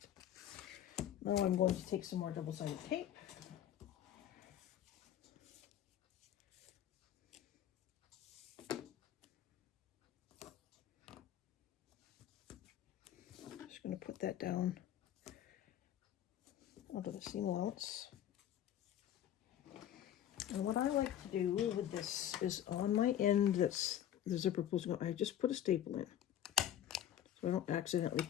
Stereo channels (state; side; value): quieter; right; 11.0 dB